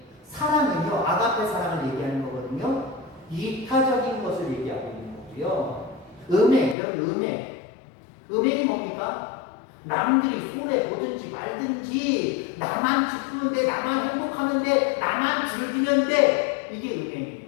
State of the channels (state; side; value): drops out; right; at 6.8 s